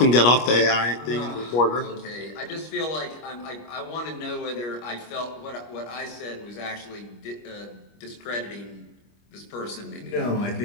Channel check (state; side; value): late; right; 25 ms